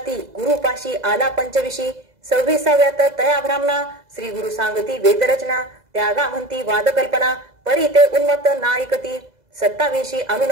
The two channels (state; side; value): late; left; 2.0 ms